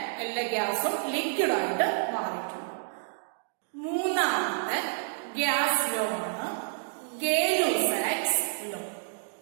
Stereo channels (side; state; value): left; silent; digital silence